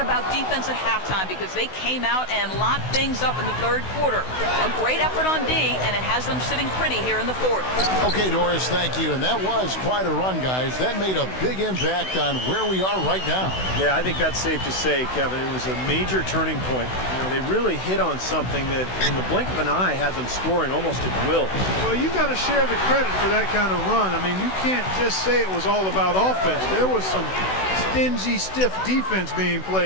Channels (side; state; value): right; late; 16 ms